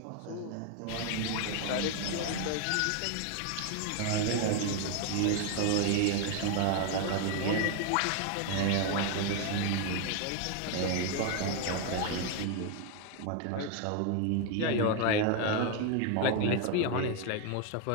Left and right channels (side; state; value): both; different; correlation 0.01